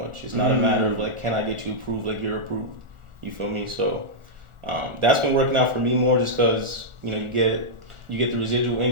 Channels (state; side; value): late; left; 1.4 ms